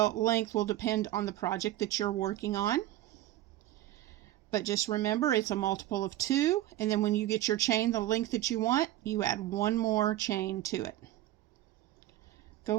will depend on the project that you're working on. But just remember, it's a multiple of 2, and then when you get your chain the length that you want, you add one more chain to it.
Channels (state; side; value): quieter; left; 14.5 dB